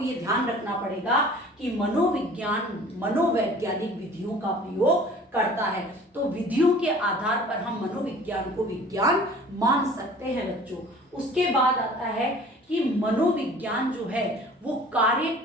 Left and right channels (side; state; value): both; normal; correlation 0.47